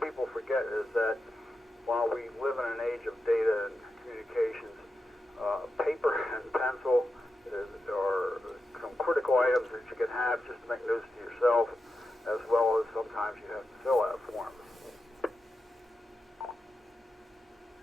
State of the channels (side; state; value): both; normal; correlation 0.89